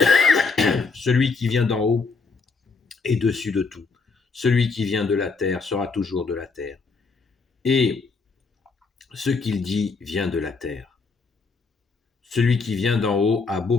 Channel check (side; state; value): right; quieter; 4.4 dB